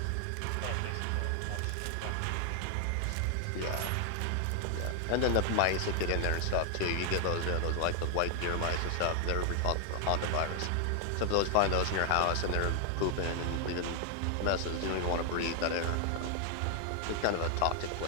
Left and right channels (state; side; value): different; both; correlation 0.00